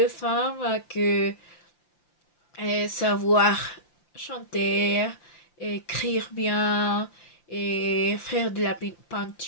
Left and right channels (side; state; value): right; late; 5.8 ms